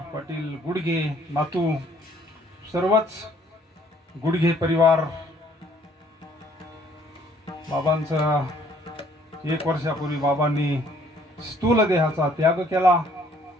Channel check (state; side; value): normal; both; correlation 0.61